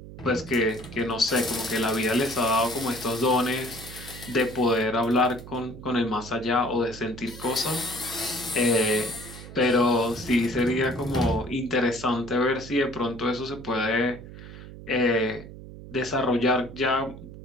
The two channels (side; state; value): right; noise; hum, 14 dB below the sound